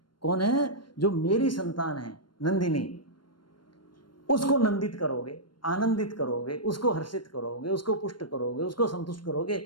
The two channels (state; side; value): late; right; 0.72 ms